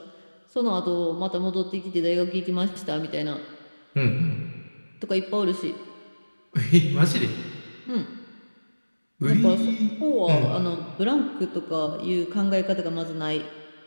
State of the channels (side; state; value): both; inverted; correlation -1.00